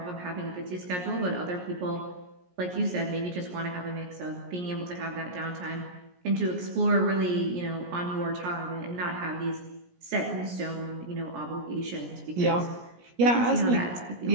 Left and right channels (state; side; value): late; left; 17 ms